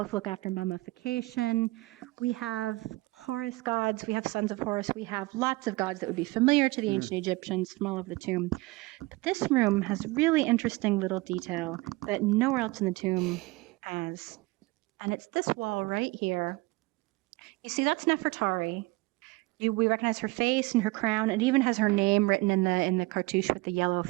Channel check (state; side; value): quieter; left; 22.2 dB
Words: look after mummification. We have Horus gods. We have sons of Horus. We have lots of gods that would be familiar to the ancient Egyptians from all over the tomb. But this room has really interesting little detail that nowhere else in the tomb has. And it's this wall right here. You see, that's Nefertari. We recognize her face and her crown. It even has her name written in the cartouche with the yellow